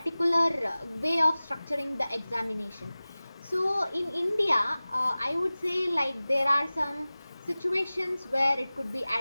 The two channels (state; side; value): inverted; both; correlation -0.98